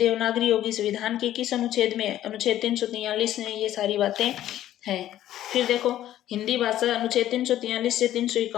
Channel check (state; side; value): quieter; right; 12.7 dB